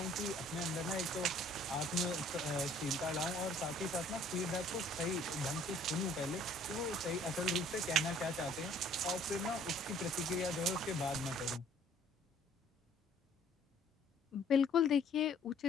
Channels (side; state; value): both; normal; correlation 0.58